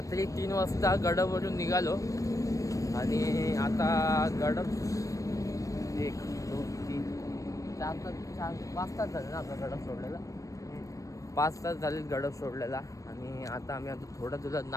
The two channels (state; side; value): late; right; 0.16 ms